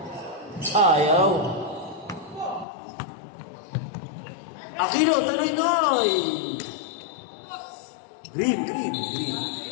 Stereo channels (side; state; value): right; drops out; at 2.7 s